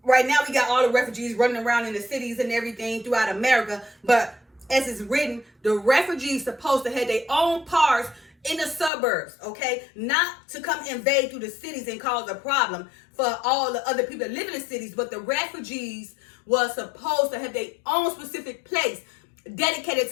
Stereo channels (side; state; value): right; drops out; at 8.9 s